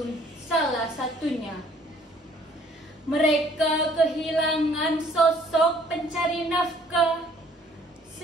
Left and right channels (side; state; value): both; normal; correlation 0.59